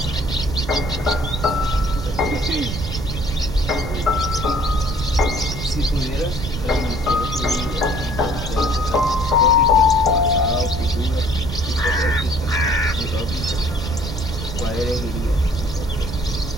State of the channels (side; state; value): right; noise; rumble, 6 dB below the sound